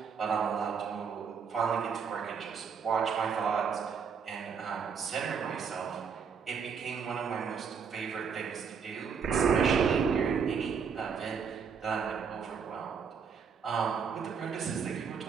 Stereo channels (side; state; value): left; quieter; 6.4 dB